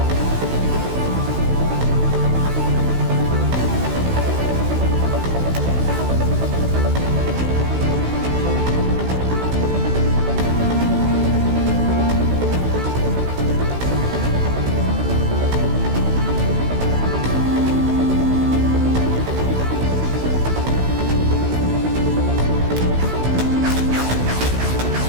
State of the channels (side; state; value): left; late; 16 ms